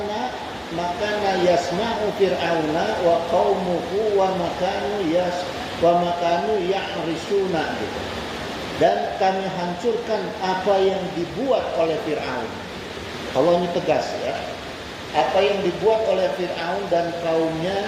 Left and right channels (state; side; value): identical; both; correlation 1.00